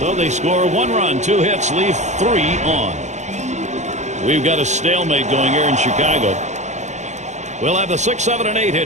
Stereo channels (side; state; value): left; late; 0.34 ms